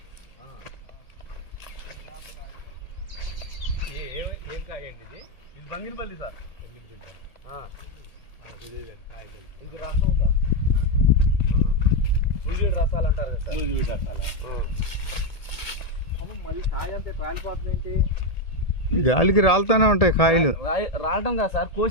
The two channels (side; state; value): right; late; 1.8 ms